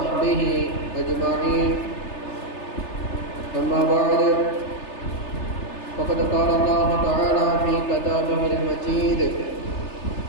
أجمعين. أما بعد، فقد قال الله تعالى في كتابه المجيد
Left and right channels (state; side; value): late; right; 3.3 ms